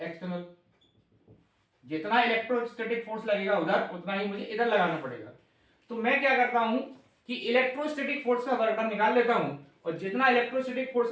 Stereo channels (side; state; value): both; identical; correlation 1.00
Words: जितना इलेक्ट्रोस्टैटिक फोर्स लगेगा उधर उतना ही मुझे इधर लगाना पड़ेगा। तो मैं क्या करता हूं कि इलेक्ट्रोस्टैटिक फोर्स का वर्क डन निकाल लेता हूं और जितना इलेक्ट्रोस्टैटिक फोर्स